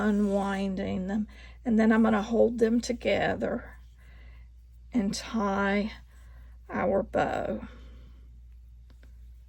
them. And then I'm going to hold them together and tie our bow.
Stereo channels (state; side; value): identical; both; correlation 1.00